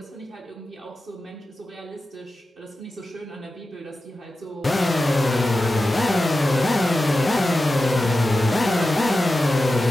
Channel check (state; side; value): normal; both; correlation 0.93